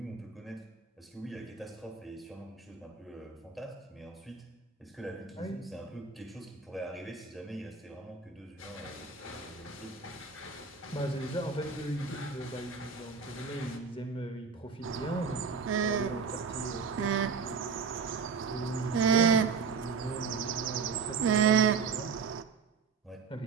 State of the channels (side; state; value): left; quieter; 5.5 dB